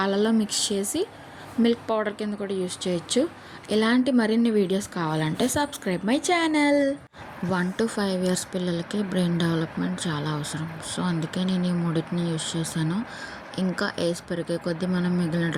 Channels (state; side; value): identical; both; correlation 1.00